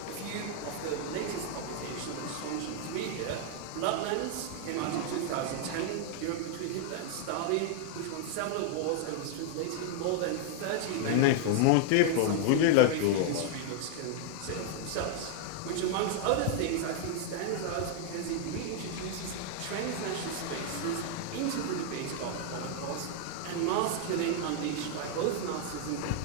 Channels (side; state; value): both; different; correlation 0.00